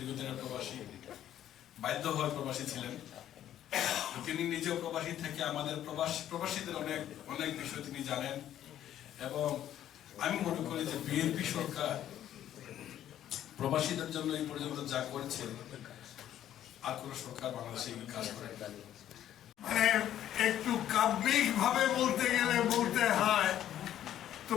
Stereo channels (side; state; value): right; quieter; 11.5 dB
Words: প্রবাসী, বাধ্য হয়ে প্রবাসী ছিলেন। তিনি নিজেও প্রবাসী থেকে আমাদের প্রবাসীদের অনেক অনেক বিষয় তিনি জানেন। এবং আমি মনে করি যে বিএনপি সরকার প্রবাসীদের জন্য এই পর্যন্ত যা করেছে আর কোন সরকার বাংলাদেশে এই কাজ করে। মানে একটু কাব্যিক ভাবে বলতে গেলে বলতে হয়,